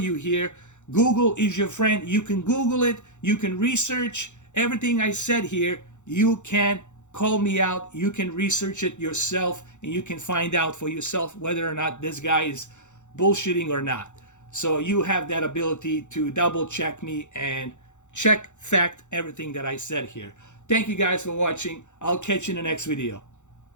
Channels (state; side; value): late; right; 0.84 ms